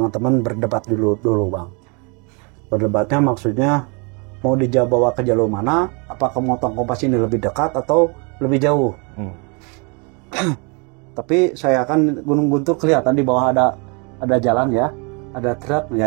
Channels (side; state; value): left; quieter; 32.9 dB